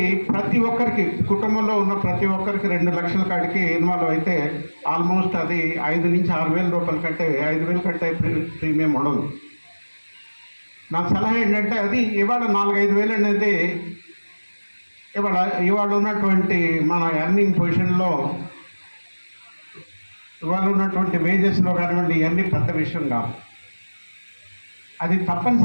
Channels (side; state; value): both; inverted; correlation -1.00